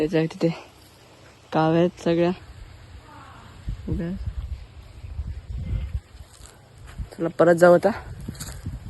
तिथे काव आहेत सगळ्या. चला परत जाऊ आता.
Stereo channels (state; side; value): identical; both; correlation 1.00